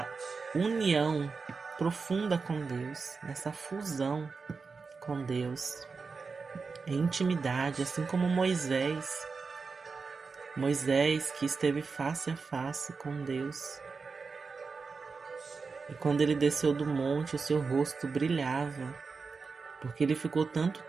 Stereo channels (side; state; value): left; quieter; 4.7 dB